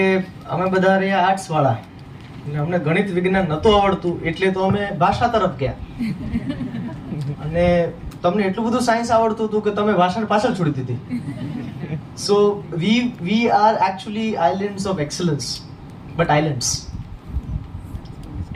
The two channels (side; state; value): both; identical; correlation 1.00